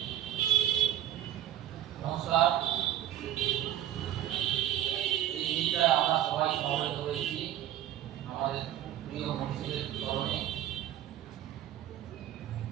নমস্কার। এই দিনটায় আমরা সবাই সমবেত হয়েছি আমাদের প্রিয় মনীষীদের স্মরণে।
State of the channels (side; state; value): left; quieter; 12.3 dB